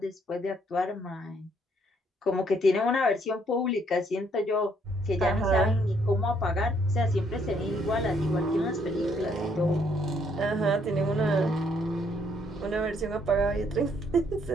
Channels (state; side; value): normal; both; correlation 0.69